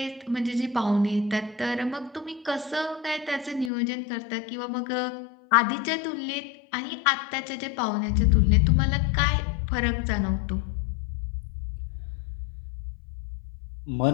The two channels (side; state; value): right; drops out; at 3.7 s